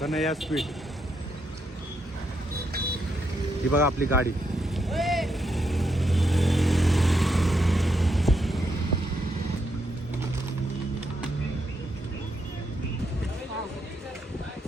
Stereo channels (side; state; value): both; normal; correlation 0.79